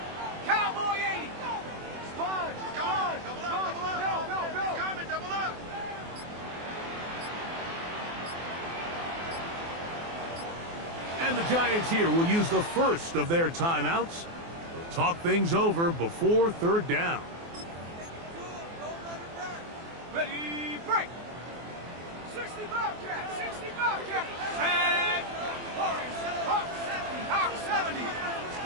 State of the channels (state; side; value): late; left; 24 ms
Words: Cowboy 80. Sponge, come on. Double up. Go. Coming, double up. And the Giants here will use the first of their timeouts. They'll talk things over before 3rd down. Ready, break. 60 Bobcat. Tag. Hawk 70.